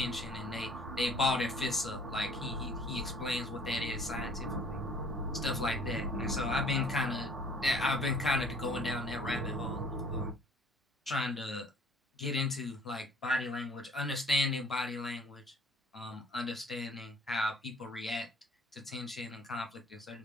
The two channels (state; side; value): normal; both; correlation 0.55